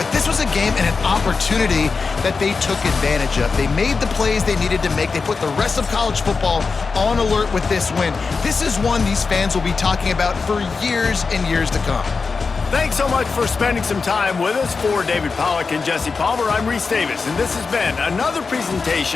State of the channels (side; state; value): right; quieter; 4.7 dB